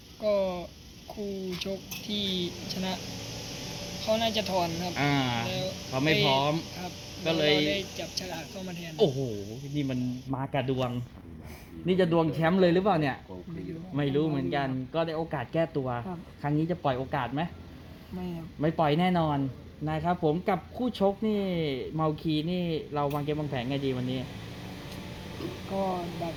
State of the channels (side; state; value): both; identical; correlation 1.00